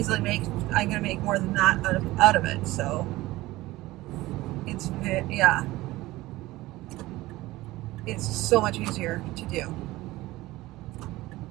I'm gonna make more than that out of it. So it's so much easier to do.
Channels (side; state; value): left; quieter; 18.3 dB